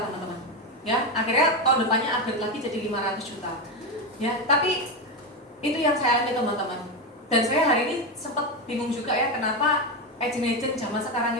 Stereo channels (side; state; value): both; normal; correlation 0.12